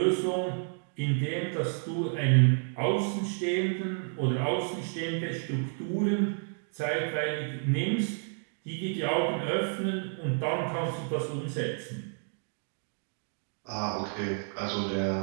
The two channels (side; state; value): left; silent; 57 dB below the other